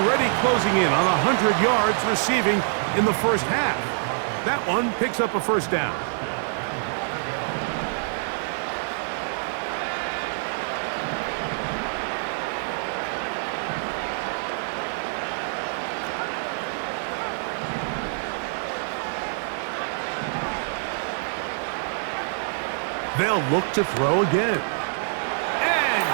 closing in on 100 yards receiving in the first half. That one picks up a first down. They'll look to throw again.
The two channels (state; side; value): silent; left; digital silence